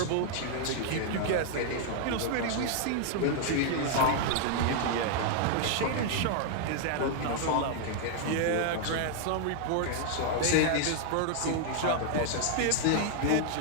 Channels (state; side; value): different; both; correlation 0.00